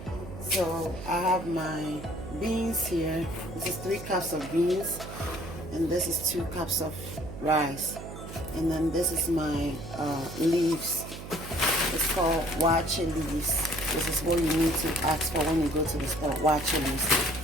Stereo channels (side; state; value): right; noise; hum, 11 dB below the sound